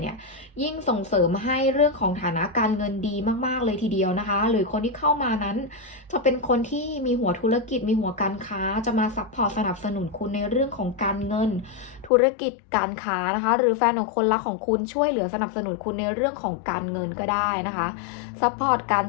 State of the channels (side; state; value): right; drops out; at 12.1 s